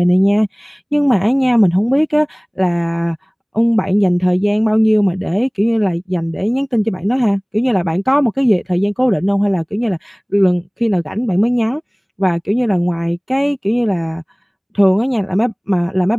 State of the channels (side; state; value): both; identical; correlation 1.00